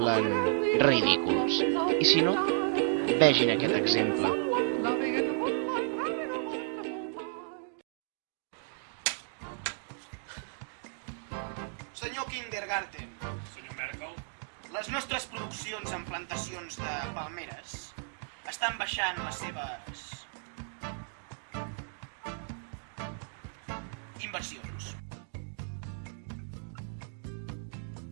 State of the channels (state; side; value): silent; left; digital silence